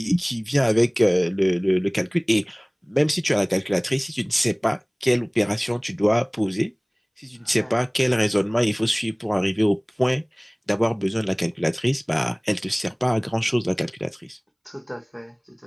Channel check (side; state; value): both; identical; correlation 1.00